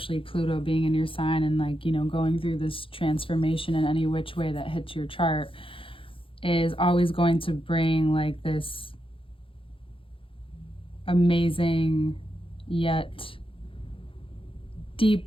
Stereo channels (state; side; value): late; right; 0.26 ms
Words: Pluto being in your sign, and like, you know, going through this transformation in any which way that hits your chart is always going to bring like this amazing yet